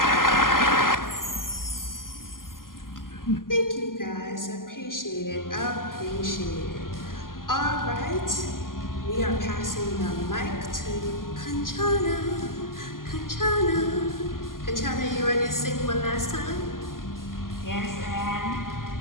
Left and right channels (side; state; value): right; late; 0.91 ms